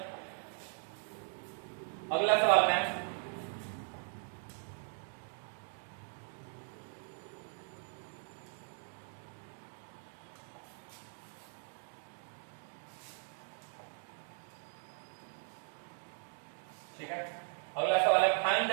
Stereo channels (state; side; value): silent; left; 52 dB below the other